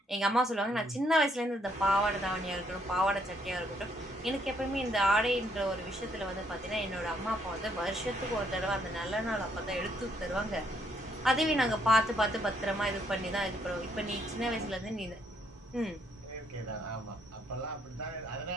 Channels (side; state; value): both; normal; correlation 0.71